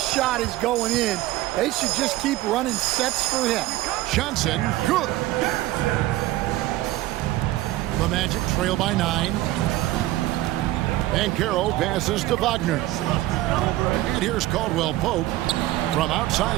is going in. They should just keep running sets for him. Johnson, good. The Magic trail by 9. Banchero passes to Wagner. And here's Caldwell Pope from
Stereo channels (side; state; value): left; quieter; 16.4 dB